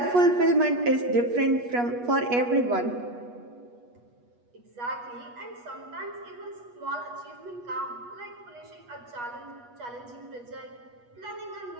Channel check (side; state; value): left; late; 8.3 ms